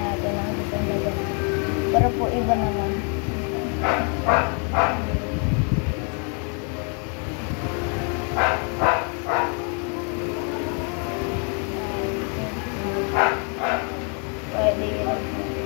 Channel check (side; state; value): right; quieter; 39.3 dB